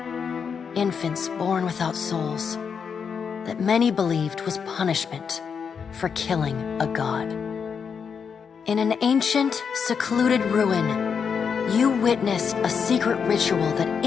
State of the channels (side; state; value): right; quieter; 6.5 dB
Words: infants born without souls, that many believed was punishment for killing a god. In an ancient, secluded ruin, you witnessed a secret ritual that